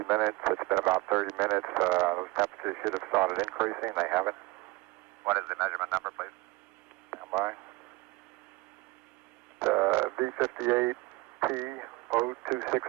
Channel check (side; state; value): left; quieter; 23.4 dB